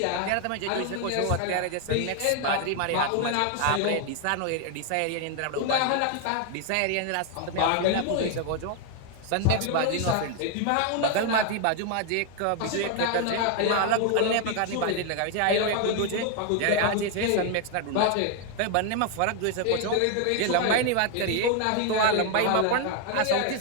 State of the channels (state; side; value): different; both; correlation 0.01